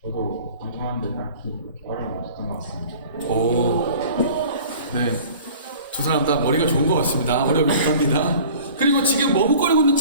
저도 방송하는데 딱히 그렇게 어려움이 없었던 것 같습니다. 네. 두 사람 다 머리가 좋은 것 같습니다. 어려움이 없답니다. 그리고 지금 머뭇거리고 있는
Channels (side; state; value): both; inverted; correlation -0.45